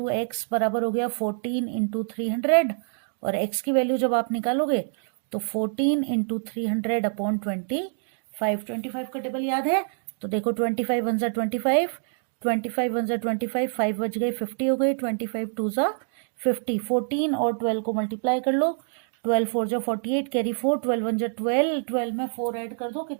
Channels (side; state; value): left; silent; 61 dB below the other